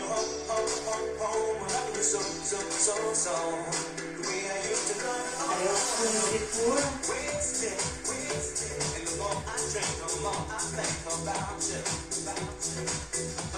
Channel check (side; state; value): both; identical; correlation 1.00